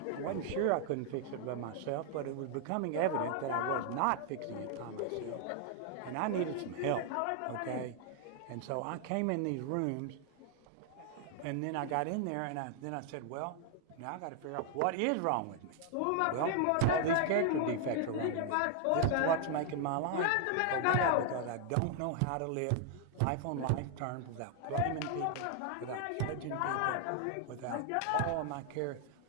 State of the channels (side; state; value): both; different; correlation 0.00